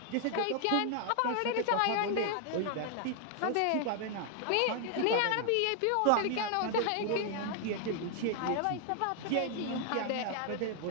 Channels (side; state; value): both; different; correlation 0.00